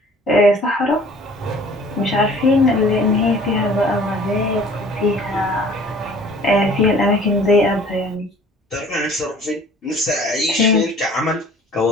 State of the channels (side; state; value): both; normal; correlation 0.51